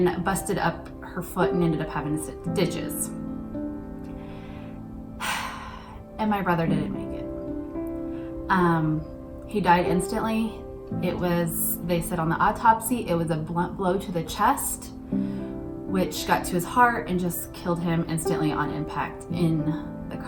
busted up her foot and ended up having stitches. And my brother didn't make it. He died instantly. They said on the autopsy, it was a blunt blow to the chest, which got to his heart and just killed him instantly on impact in the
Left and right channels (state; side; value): identical; both; correlation 1.00